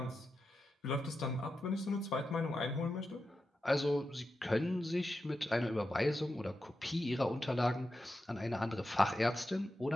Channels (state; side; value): normal; both; correlation 0.90